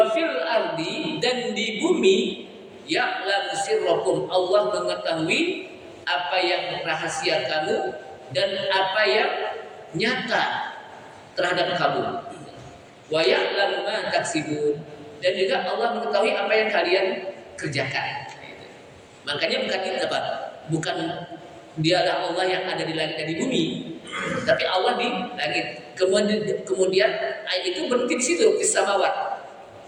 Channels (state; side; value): identical; both; correlation 1.00